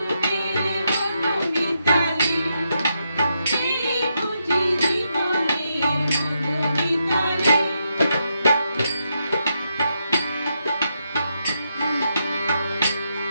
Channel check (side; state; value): both; inverted; correlation -0.82